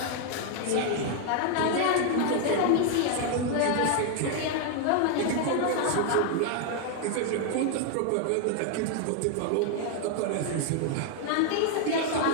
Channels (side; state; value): both; different; correlation 0.00